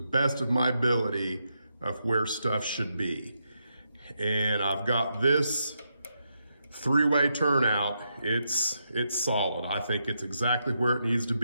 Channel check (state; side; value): inverted; both; correlation -0.82